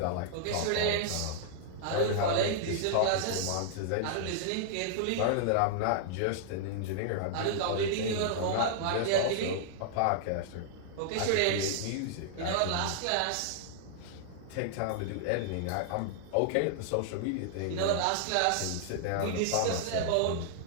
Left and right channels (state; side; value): different; both; correlation -0.01